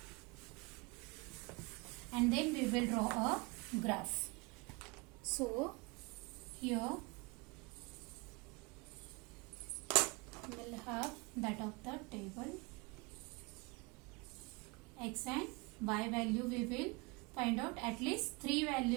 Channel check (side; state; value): left; quieter; 27.2 dB